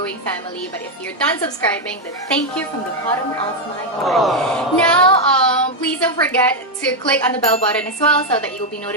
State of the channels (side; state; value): both; normal; correlation 0.03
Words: family. But if you're done subscribing, then thank you from the bottom of my heart. Now, please don't forget to click on the bell button as well so that you'll be